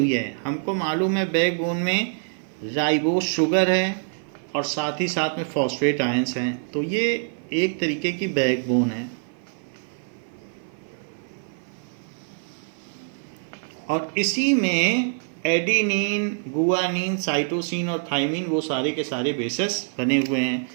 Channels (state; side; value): silent; left; 56 dB below the other